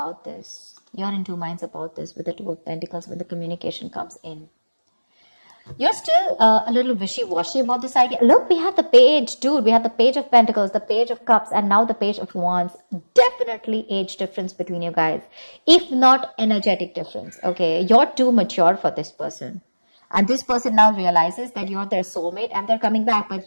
this. You're in two minds about this with the Two of Pentacles when the communication comes in. You're still a little wishy-washy about this idea. Look, we have the page, dude. We have the Page of Pentacles, the Page of Cups, and now the Page of Wands. Definitely age difference between you guys. If not energetic difference, okay? You're too mature for this person. And this person now realizes that you're their soulmate and they're coming back. But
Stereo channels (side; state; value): both; inverted; correlation -1.00